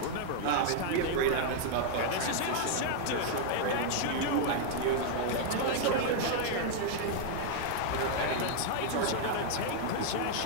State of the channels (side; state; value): both; different; correlation -0.01